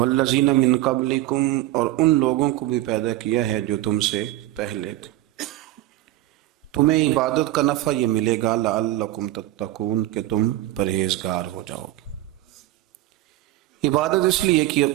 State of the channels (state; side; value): quieter; left; 15.6 dB